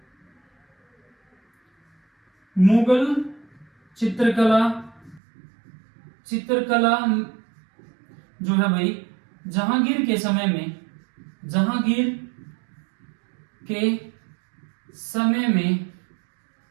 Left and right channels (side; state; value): left; drops out; at 5.2 s